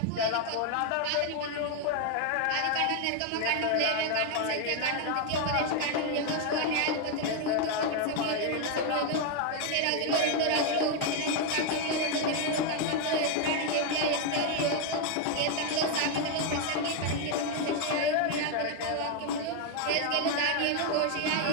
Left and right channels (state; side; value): different; both; correlation 0.01